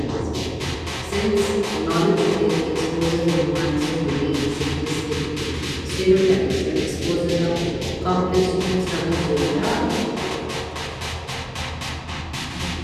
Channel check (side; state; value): both; identical; correlation 1.00